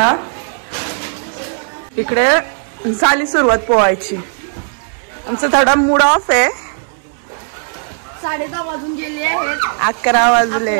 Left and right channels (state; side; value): silent; left; 65 dB below the other